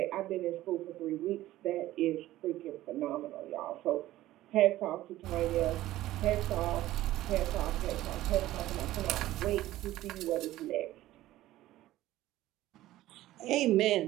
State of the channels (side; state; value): left; quieter; 15.4 dB